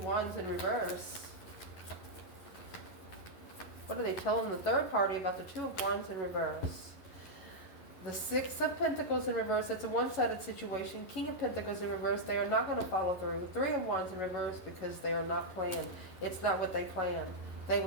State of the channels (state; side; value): late; right; 11 ms